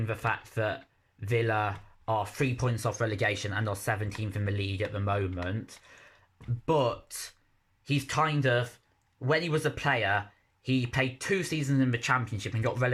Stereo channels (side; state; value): both; identical; correlation 1.00